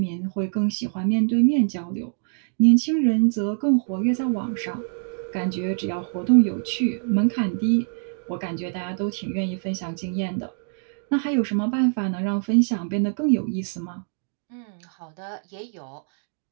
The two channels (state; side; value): silent; left; 57 dB below the other